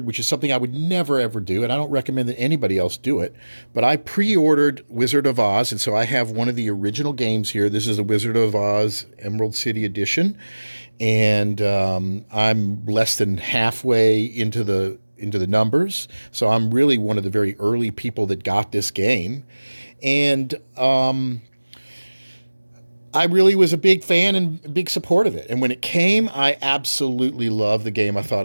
which is something I would never ever do, and I don't recommend that anybody else do it, but I pre-ordered Wizard of Oz, and so I have one of the original games here. This is the Wizard of Oz Emerald City Edition, and I'm less than halfway into the numbers, so I'm really one of the very early people that got this game. And I really was a big fan and a big support of it. And when it came, I absolutely loved the game. I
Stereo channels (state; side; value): inverted; both; correlation -1.00